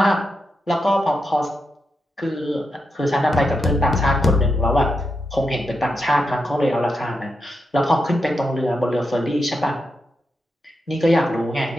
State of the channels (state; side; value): normal; both; correlation 0.86